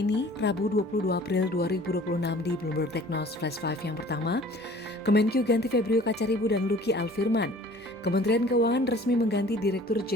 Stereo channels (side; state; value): right; noise; hum, 29 dB below the sound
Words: ini, Rabu 22 April 2026 di Bloomberg Technos Flash 5 yang pertama. Kemenkyu ganti Febrio Kacaribu dan Luki Alfirman. Kementerian Keuangan resmi mengganti Direktur